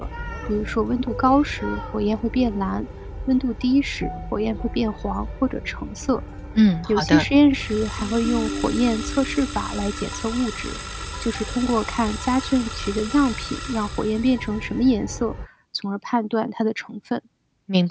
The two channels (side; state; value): both; identical; correlation 1.00